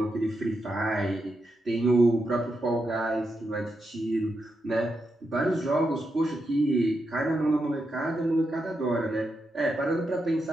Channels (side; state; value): both; normal; correlation 0.85